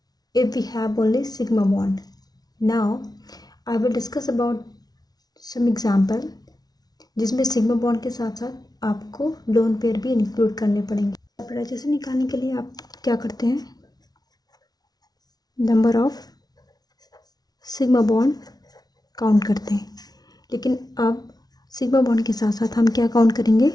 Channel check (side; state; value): right; late; 0.19 ms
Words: if we have only sigma bond. Now I will discuss about some example जिसमें सिग्मा बॉन्ड के साथ साथ आपको लोन पेयर भी इंक्लूड करने पड़ेंगे। हाइब्रिडाइजेशन निकालने के लिए आप क्या करते हैं, number of sigma bond count करते हैं, लेकिन अब सिग्मा बॉन्ड के साथ साथ हम क्या काउंट करेंगे,